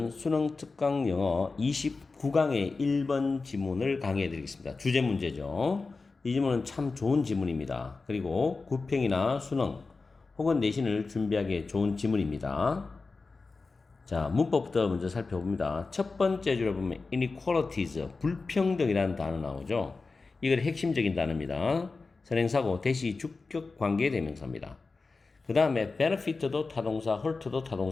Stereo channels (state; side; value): quieter; right; 4.0 dB